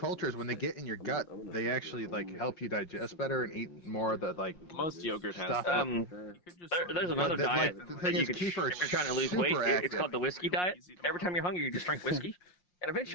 when they get in your gut, they actually like help you digest better and eat more of the like most yogurt has stuff. There's another diet that you is, can, if you're kefir is trying to lose weight. super It's called the whiskey diet. Every time you're hungry, you just drink whiskey, and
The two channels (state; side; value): late; right; 5.6 ms